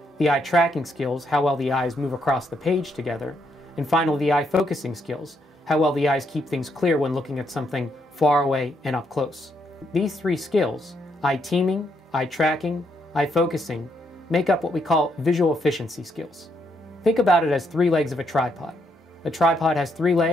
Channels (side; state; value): both; normal; correlation 0.76